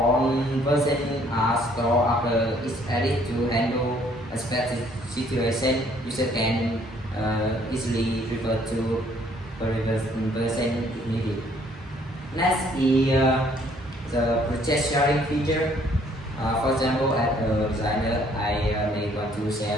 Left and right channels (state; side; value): normal; both; correlation 0.62